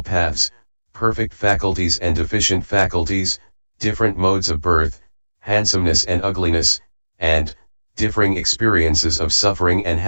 paths, perfect faculties and deficient faculties, different modes of birth, handsomeness and ugliness, and differing experiences of suffering and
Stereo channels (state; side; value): inverted; both; correlation -1.00